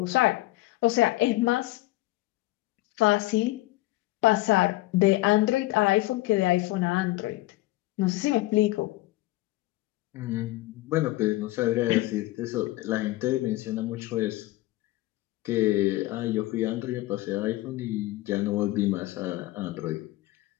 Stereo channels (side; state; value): right; quieter; 18.4 dB